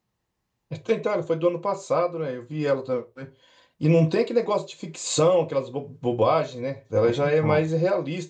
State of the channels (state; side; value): identical; both; correlation 1.00